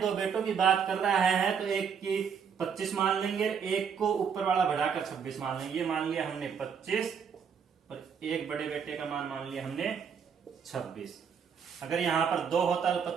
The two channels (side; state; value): left; quieter; 6.9 dB